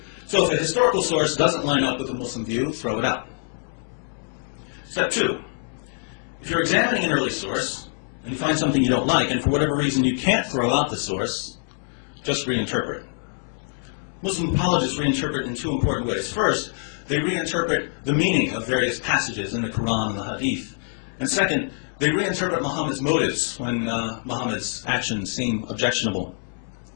So if a historical source doesn't line up with the Muslim view, throw it out. Step 2, if you're examining an early source and you find something you don't like, and for whatever reason you can't throw out the source, just reinterpret. Muslim apologists reinterpret in 2 important ways. First, they reinterpret the meaning of various passages in the Quran and the Hadith. And second, they reinterpret Muhammad's motives when Muhammad's actions seem objectionable.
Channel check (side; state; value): right; silent; 62 dB below the other